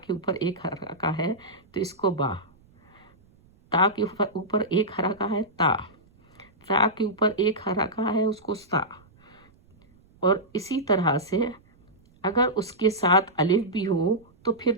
ऊपर एक हरका है तो इसको बा, ता के ऊपर एक हरका है ता के ऊपर एक हरका है उसको सा। और इसी तरह से अगर उसके साथ अलिफ भी हो तो फिर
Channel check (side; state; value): right; noise; rumble, 30 dB below the sound